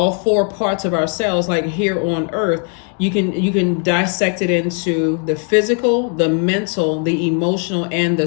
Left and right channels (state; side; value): quieter; right; 38.5 dB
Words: 4 parts of ourselves, like here on earth, you can dissect it into the physical, the mental, the emotional, and the